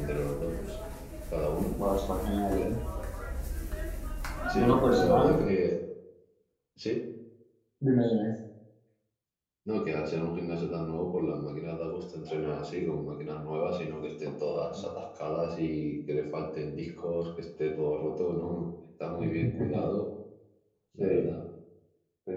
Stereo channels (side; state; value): both; identical; correlation 1.00